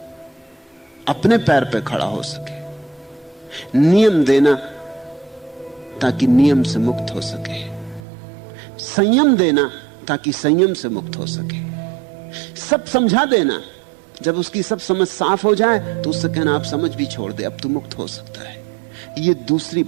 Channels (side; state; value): left; drops out; at 8.0 s